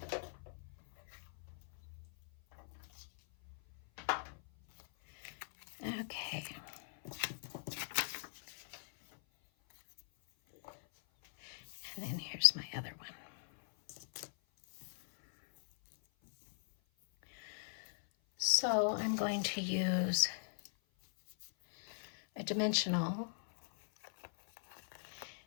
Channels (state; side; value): silent; right; 51 dB below the other